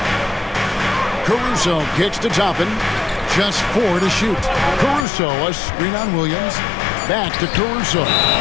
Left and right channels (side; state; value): right; drops out; at 5.1 s